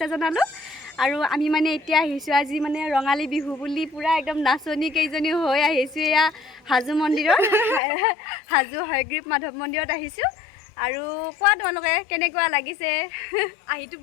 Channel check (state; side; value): drops out; right; at 7.8 s